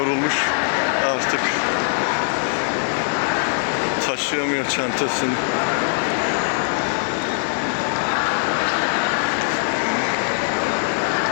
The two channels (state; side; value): silent; right; 65 dB below the other